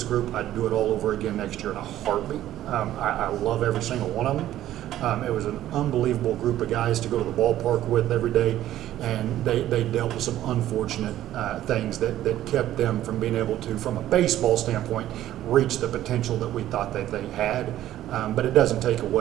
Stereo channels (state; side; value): quieter; left; 13.1 dB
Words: group, I'd do it all over again next year in a heartbeat. I love every single one of them. It was an unbelievable group of guys to go to the ballpark with every day, and they dealt with some unfortunate things that kept them from being able to, from a baseball standpoint, reach the potential that we thought that they had. But it doesn't take